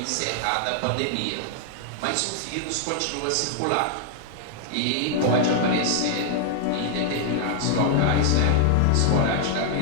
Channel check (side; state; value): both; different; correlation -0.01